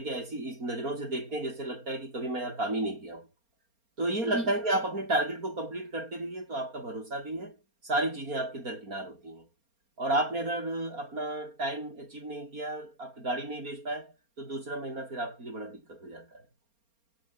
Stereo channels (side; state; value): left; late; 4.3 ms